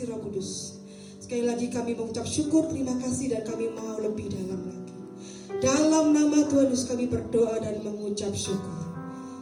Roh Kudus. Sekali lagi kami mengucap syukur, terima kasih, dan kami mau lebih dalam lagi. Dalam nama Tuhan Yesus kami berdoa dan mengucap syukur.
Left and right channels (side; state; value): both; identical; correlation 1.00